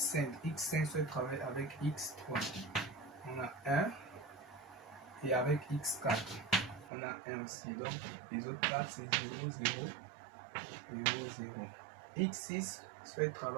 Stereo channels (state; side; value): drops out; left; at 6.9 s